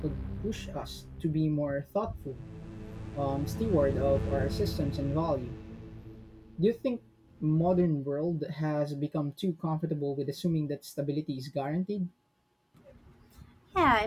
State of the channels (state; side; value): identical; both; correlation 1.00